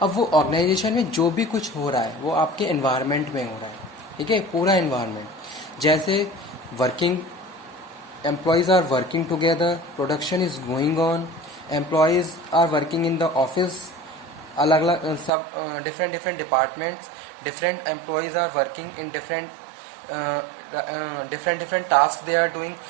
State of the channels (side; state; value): left; drops out; at 15.3 s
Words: अब वो ऑर्गेनाइजेशन में जो भी कुछ हो रहा है वो आपके एनवायरनमेंट में हो रहा है। ठीक है, पूरा एनवायरनमेंट, जैसे working employees are working together, production is going on, employees are working in the office, अलग अलग सब different departments, different employees are working in different task they are doing.